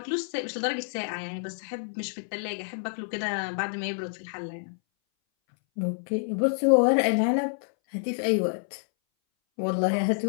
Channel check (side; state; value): right; silent; 59 dB below the other